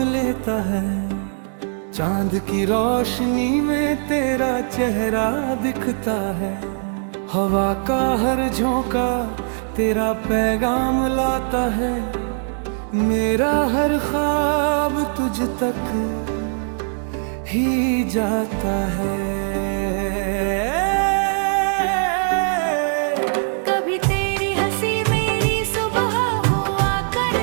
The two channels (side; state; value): left; silent; digital silence